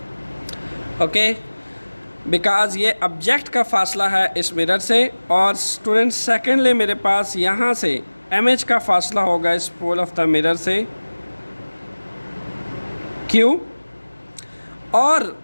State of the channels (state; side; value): inverted; both; correlation -1.00